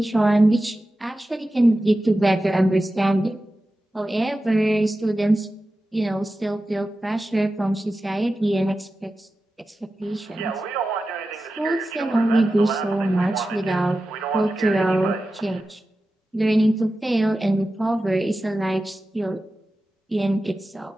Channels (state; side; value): normal; both; correlation 0.93